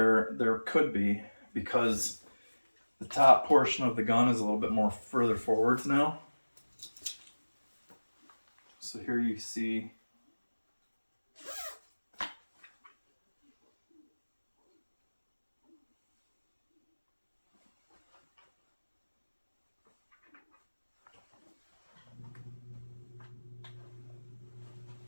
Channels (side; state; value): both; inverted; correlation -1.00